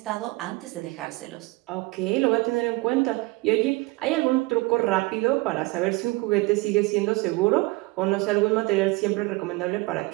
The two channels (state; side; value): quieter; left; 23.3 dB